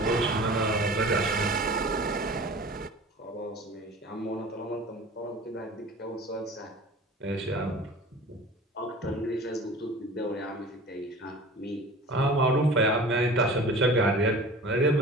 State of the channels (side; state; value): both; normal; correlation 0.41